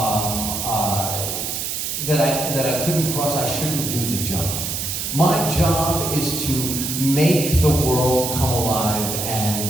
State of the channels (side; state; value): right; noise; hiss, 3 dB below the sound